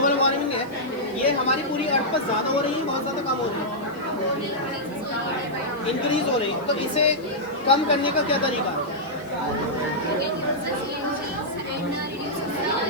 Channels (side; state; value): left; noise; hiss, 27 dB below the sound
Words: warming है, ये हमारी पूरी अर्थ पर ज़्यादा हो रही है, बहुत ज़्यादा कम हो रही है, इंक्रीज हो रही है। तो इसे कम करने का क्या तरीका है?